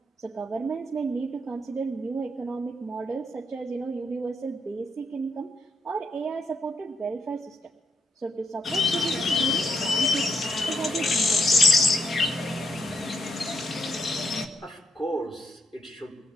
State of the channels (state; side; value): normal; both; correlation 0.77